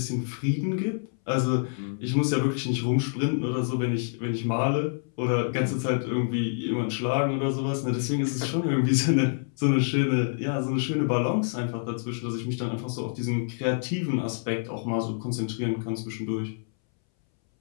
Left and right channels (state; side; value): silent; right; 60 dB below the other